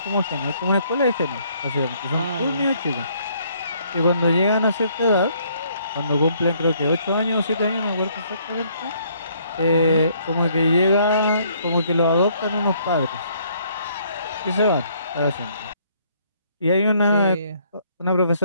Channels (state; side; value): inverted; both; correlation -0.66